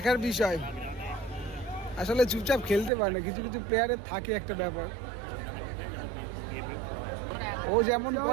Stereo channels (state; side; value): drops out; left; at 2.9 s